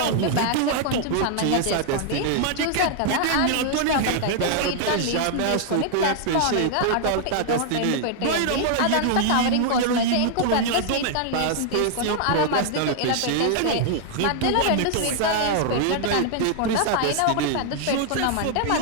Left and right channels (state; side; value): different; both; correlation 0.00